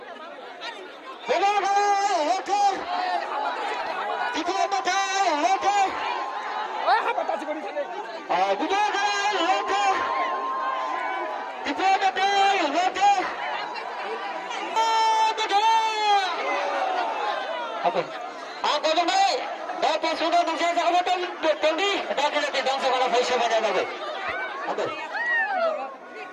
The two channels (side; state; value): both; identical; correlation 1.00